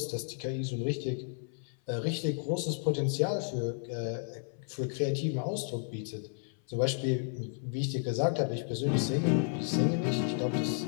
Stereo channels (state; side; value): silent; right; 56 dB below the other